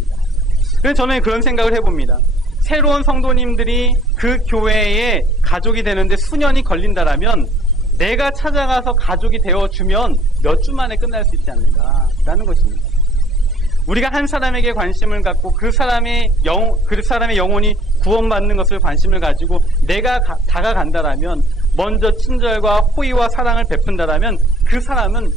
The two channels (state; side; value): normal; both; correlation 0.58